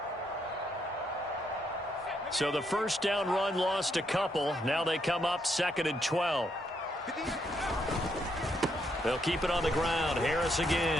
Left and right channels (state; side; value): normal; both; correlation 0.76